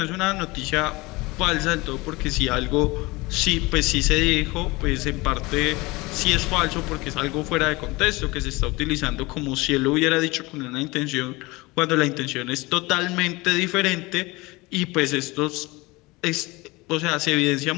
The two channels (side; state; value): right; quieter; 23.0 dB